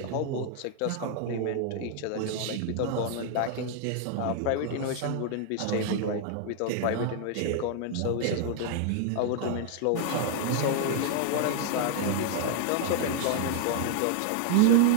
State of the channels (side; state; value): both; different; correlation 0.00